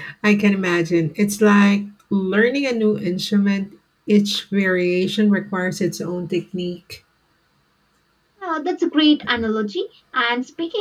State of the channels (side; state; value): both; identical; correlation 1.00